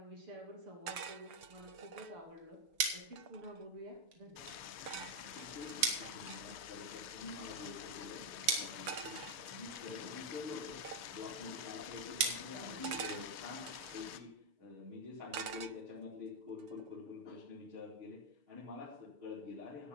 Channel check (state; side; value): late; left; 6.7 ms